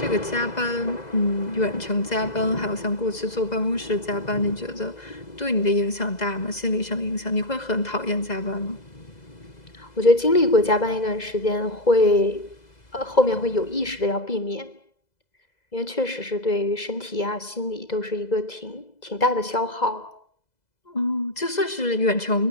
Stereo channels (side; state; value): right; late; 2.0 ms